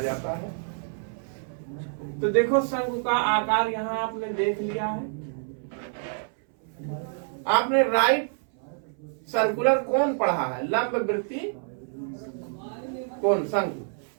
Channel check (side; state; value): left; silent; 60 dB below the other